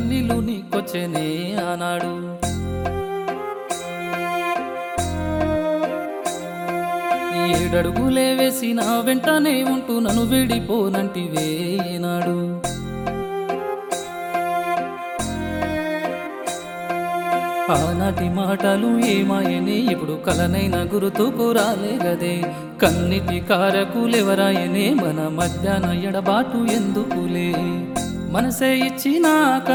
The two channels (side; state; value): both; identical; correlation 1.00